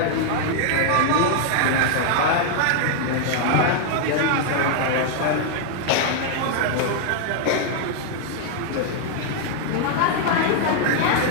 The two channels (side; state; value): both; different; correlation 0.00